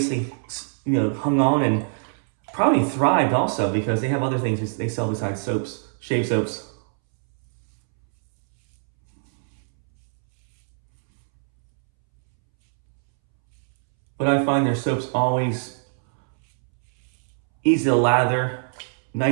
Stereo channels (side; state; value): left; silent; 63 dB below the other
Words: hung on and probably thrived also because they have other things they sell besides soaps, shave soaps. But I find their soaps always easy to lather,